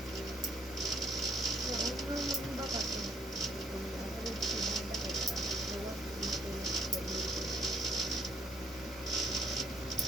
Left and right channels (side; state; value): both; normal; correlation 0.64